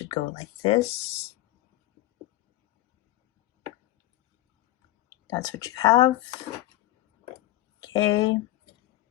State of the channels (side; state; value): right; quieter; 16.2 dB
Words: go like this. That's what you have. Okay,